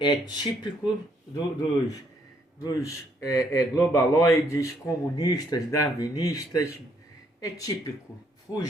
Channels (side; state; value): both; normal; correlation 0.69